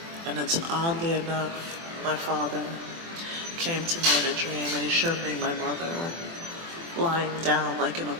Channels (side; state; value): left; late; 24 ms